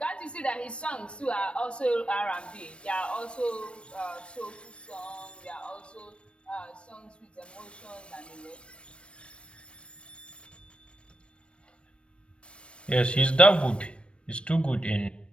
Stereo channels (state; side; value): late; right; 0.059 ms